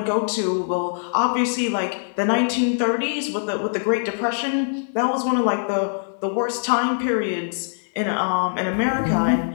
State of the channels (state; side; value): silent; right; 64 dB below the other